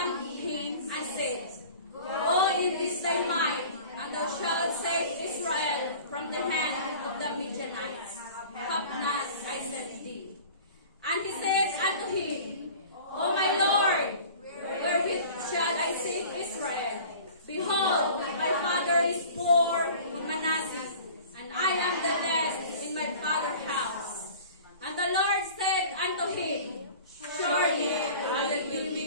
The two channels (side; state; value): both; inverted; correlation -0.43